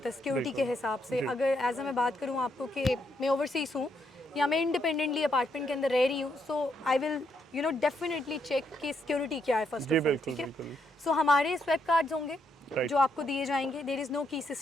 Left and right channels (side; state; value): both; normal; correlation 0.76